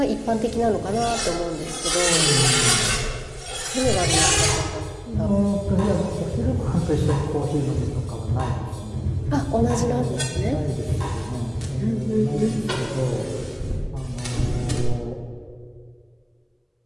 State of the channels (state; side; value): identical; both; correlation 1.00